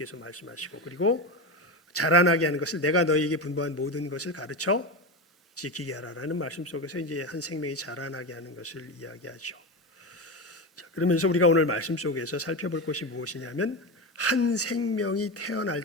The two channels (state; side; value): normal; both; correlation 0.19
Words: 말씀하시고, 그리고 자라나게 하는 것을 내가 너희에게 분부한 모든 것을 가르쳐 지키게 하라라는 말씀 속에서 이제 한 생명이 자라나게 하는 것을 이야기하죠. 자, 그러면서 우리가 오늘 말씀 속에서 살펴볼 것이 무엇이냐면 한 생명이 태어날